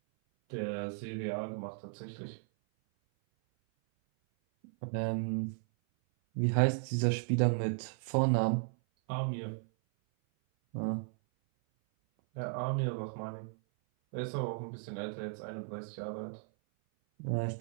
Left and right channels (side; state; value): left; silent; 54 dB below the other